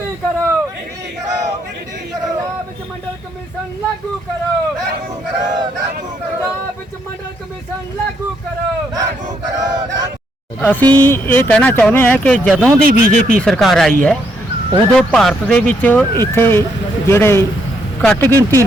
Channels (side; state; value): both; normal; correlation 0.74